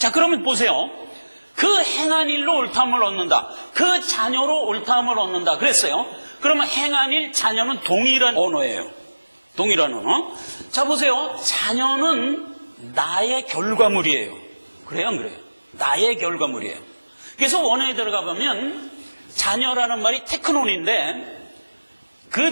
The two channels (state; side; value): inverted; both; correlation -1.00